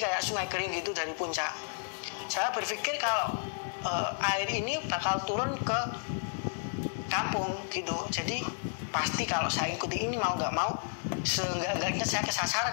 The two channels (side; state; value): right; silent; digital silence